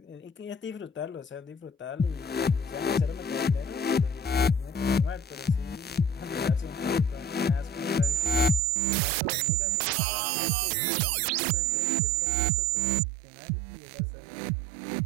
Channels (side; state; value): left; drops out; at 8.6 s